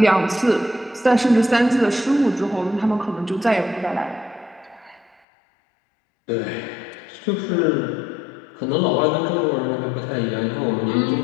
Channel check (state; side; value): drops out; right; at 5.2 s